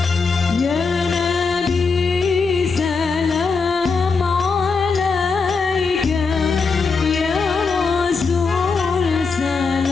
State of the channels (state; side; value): quieter; right; 4.8 dB